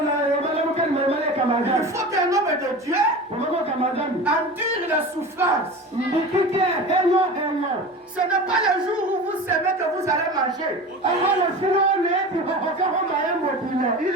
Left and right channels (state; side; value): normal; both; correlation 0.33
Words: homme de Dieu endure la souffrance. Ce n'est pas le jour où vous savez que vous allez manger. Il